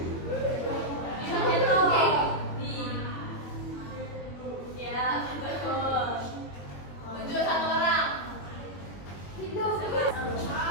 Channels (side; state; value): right; late; 21 ms